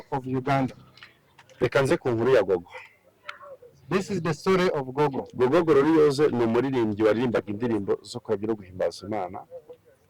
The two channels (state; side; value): identical; both; correlation 1.00